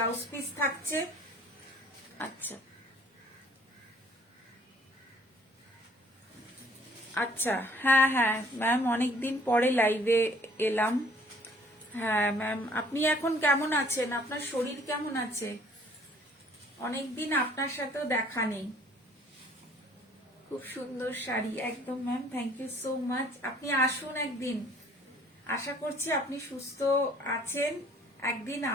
পিস থাকছে। আচ্ছা আচ্ছা, হ্যাঁ হ্যাঁ ম্যাম, অনেকদিন পরে লাইভে এলাম। হ্যাঁ ম্যাম, আপনি এখন কেমন আছেন? আপনার শরীর কেমন আছে? অনেকদিন আপনার সাথেও দেখা নেই। খুব সুন্দর শাড়ি, একদম ma'am, thank you so much. আপনি আসুন একদিন, আশা করছি আপনি সুস্থ আছেন, একদিন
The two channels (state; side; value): normal; both; correlation 0.58